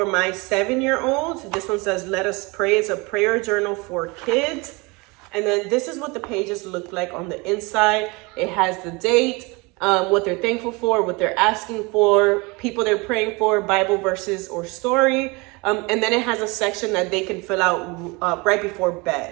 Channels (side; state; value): left; quieter; 26.6 dB